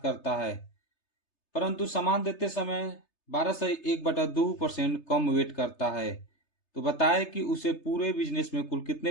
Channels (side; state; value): right; late; 3.3 ms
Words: करता है, परंतु सामान देते समय 12 सही 1/2% कम वेट करता है। तो बताए कि उसे पूरे बिजनेस में कुल